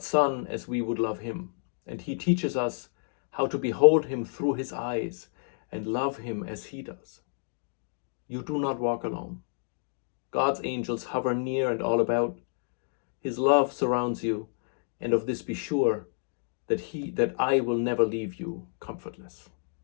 Son as we would love him, and he teaches us how to behold him through his eyes and love him as he does. You do not walk alone. God's angels hover near and all about. His love surrounds you, and of this be sure, that I will never leave you comfortless.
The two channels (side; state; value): right; silent; digital silence